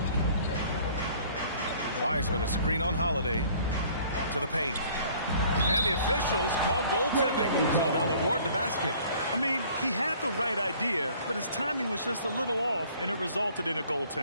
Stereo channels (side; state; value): both; inverted; correlation -0.55